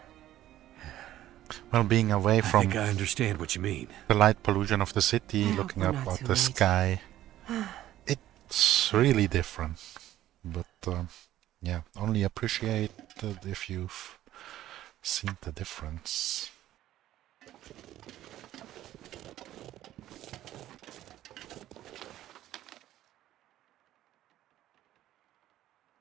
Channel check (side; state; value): left; quieter; 13.5 dB